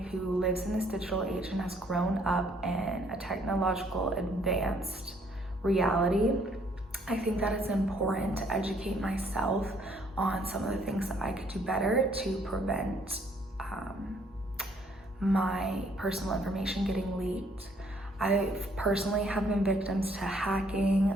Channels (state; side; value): normal; both; correlation 0.65